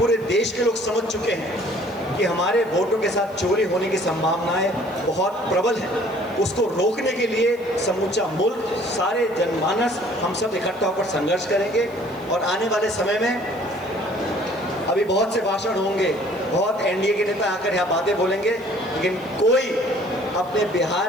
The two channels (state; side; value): noise; right; hiss, 27 dB below the sound